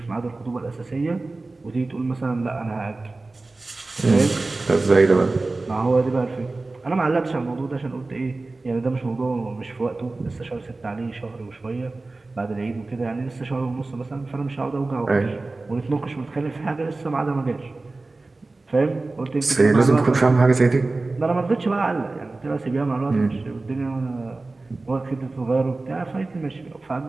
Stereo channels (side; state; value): left; quieter; 3.3 dB